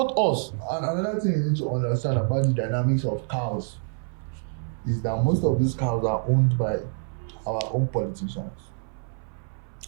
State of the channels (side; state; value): left; silent; 61 dB below the other